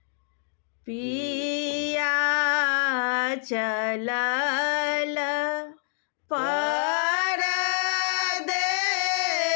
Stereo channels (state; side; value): silent; right; digital silence